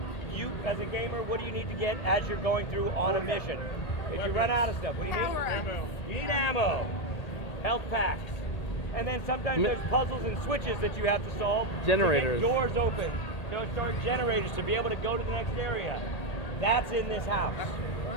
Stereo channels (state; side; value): late; right; 1.8 ms